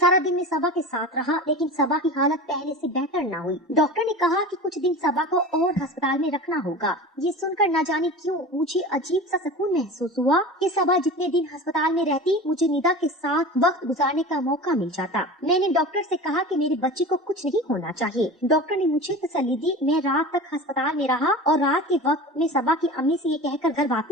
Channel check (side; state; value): both; normal; correlation 0.33